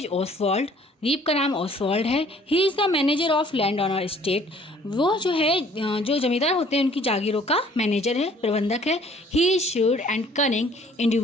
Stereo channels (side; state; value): both; normal; correlation 0.57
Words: Oswald. रीव का नाम Oswald है. He is the manager of land on state. वो जो है जो जमींदार होते हैं उनकी जागीरों का मैनेजर है, प्रबंधक है. He is shrewd and cunning